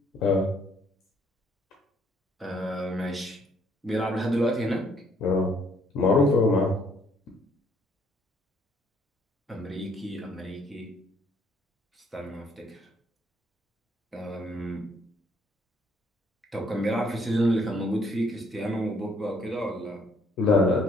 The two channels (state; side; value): normal; both; correlation 0.65